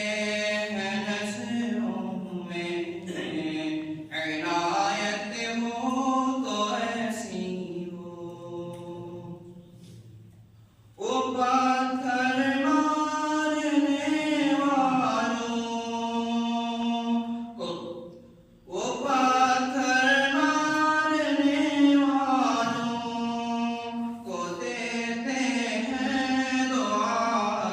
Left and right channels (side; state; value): both; identical; correlation 1.00